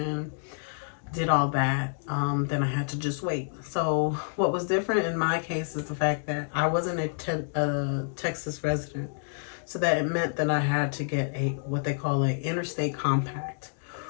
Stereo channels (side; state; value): right; silent; digital silence